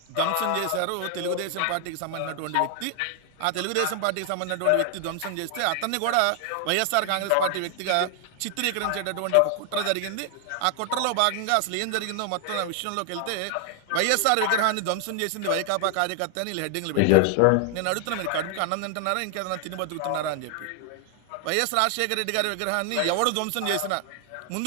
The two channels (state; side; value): different; both; correlation 0.00